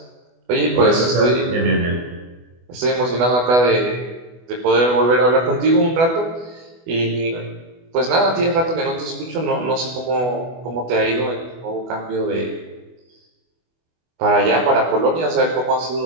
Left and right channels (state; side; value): late; left; 24 ms